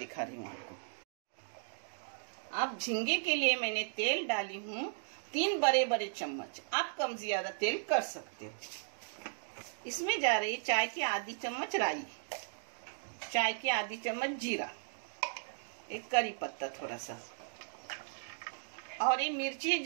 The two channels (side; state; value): left; silent; digital silence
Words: रही हूँ आपको। अब झींगे के लिए मैंने तेल डाली हूँ 3 बड़े बड़े चम्मच। आप कम ज्यादा तेल कर सकते हो। इसमें जा रही चाय की आधी चम्मच राई, चाय की आधी चम्मच जीरा, एक करी पत्ता थोड़ा सा, और ये मिर्ची है